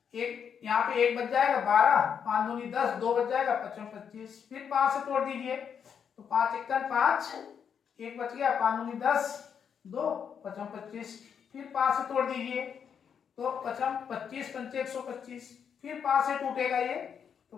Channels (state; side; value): quieter; right; 7.4 dB